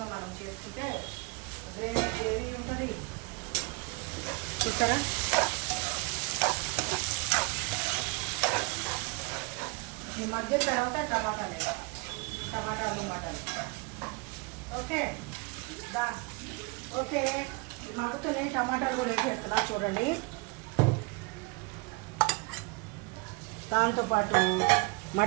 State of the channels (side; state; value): left; quieter; 28.1 dB